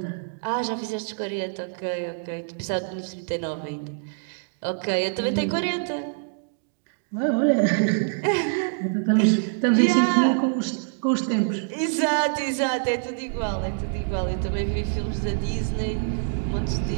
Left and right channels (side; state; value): left; silent; digital silence